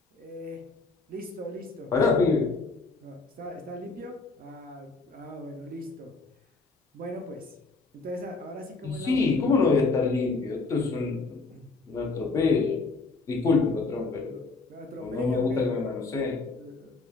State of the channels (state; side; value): quieter; right; 3.8 dB